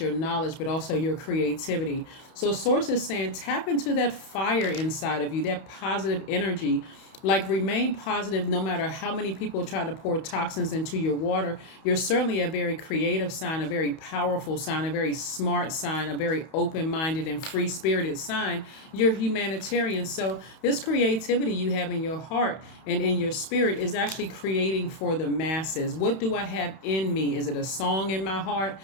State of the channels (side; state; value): right; late; 31 ms